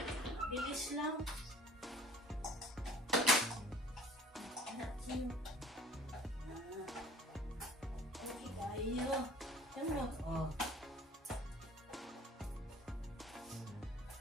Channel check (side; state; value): both; normal; correlation 0.48